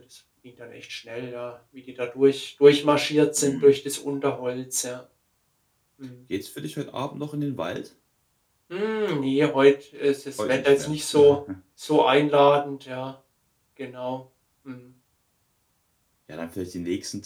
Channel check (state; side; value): identical; both; correlation 1.00